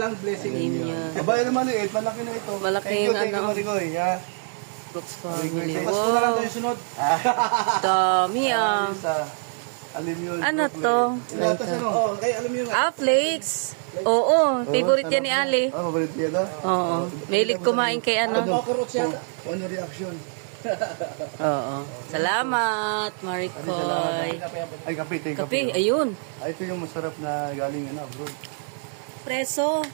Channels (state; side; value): silent; left; 56 dB below the other